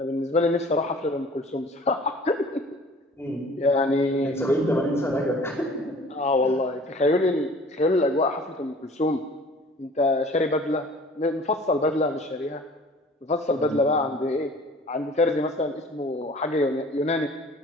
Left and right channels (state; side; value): normal; both; correlation 0.48